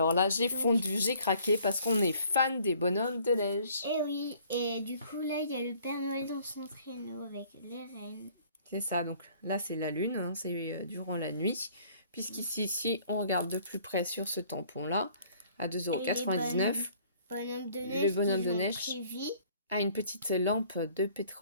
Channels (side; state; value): both; inverted; correlation -0.57